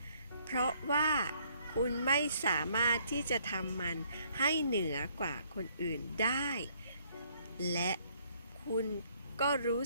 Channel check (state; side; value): inverted; both; correlation -0.65